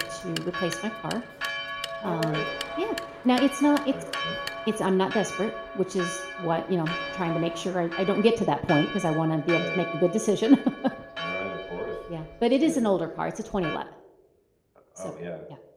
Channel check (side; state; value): both; identical; correlation 1.00